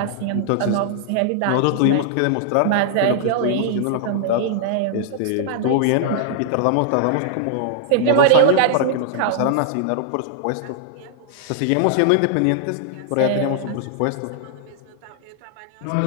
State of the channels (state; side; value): different; both; correlation -0.01